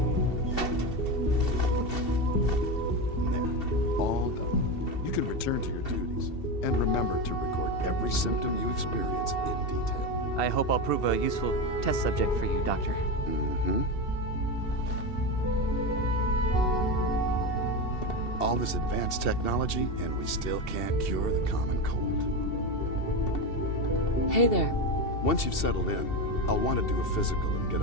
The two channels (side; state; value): right; late; 2.7 ms